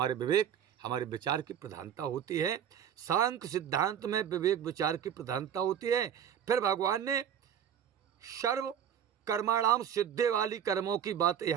विवेक हमारे विचार की प्रधानता होती है। सांख्य सिद्धांत में विवेक विचार की प्रधानता होती है। फिर भगवान ने सर्व कर्माणाम सिद्धे वाली कर्मों की बात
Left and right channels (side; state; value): left; quieter; 9.2 dB